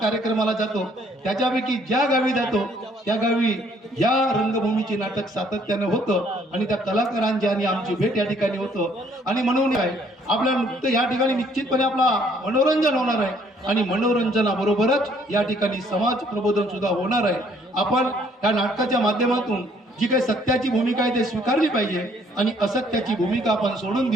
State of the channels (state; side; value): normal; both; correlation 0.63